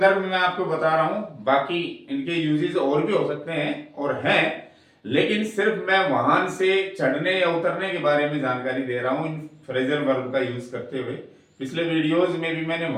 में मैं आपको बता रहा हूं, बाकी इनके यूजेस और भी हो सकते हैं और हैं, लेकिन सिर्फ मैं वाहन से चढ़ने या उतरने के बारे में जानकारी दे रहा हूं इन फ्रेजल वर्ब का यूज करते हुए। पिछले वीडियोस में भी मैंने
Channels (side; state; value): both; identical; correlation 1.00